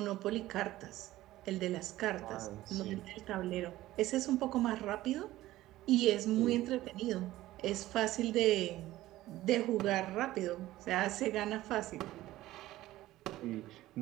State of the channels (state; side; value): quieter; left; 15.9 dB